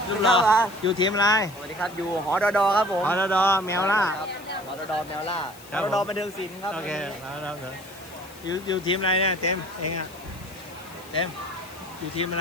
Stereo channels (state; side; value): noise; left; hiss, 21 dB below the sound